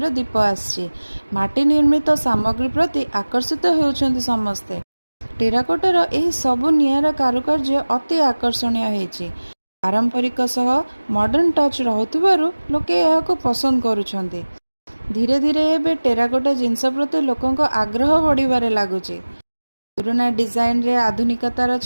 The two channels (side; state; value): both; inverted; correlation -1.00